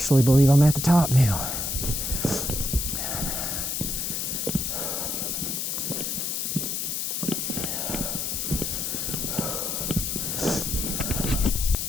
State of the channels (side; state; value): left; noise; hiss, 1 dB below the sound